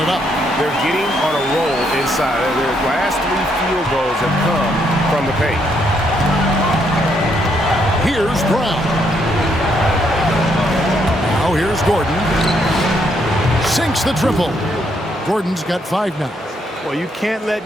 up. They're getting on a roll inside. Their last 3 field goals have come from the paint. Here's Brown. Now here's Gordon. Sinks the triple. Gordon's got 5 now. Well, you can't let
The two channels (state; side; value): normal; both; correlation 0.74